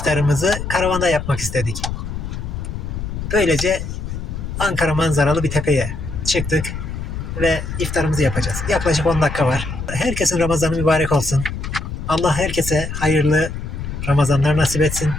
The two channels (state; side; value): noise; left; rumble, 6 dB below the sound